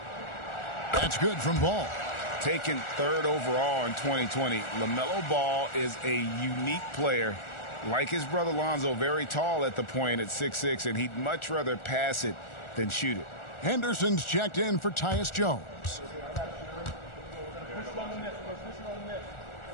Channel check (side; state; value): right; late; 1.4 ms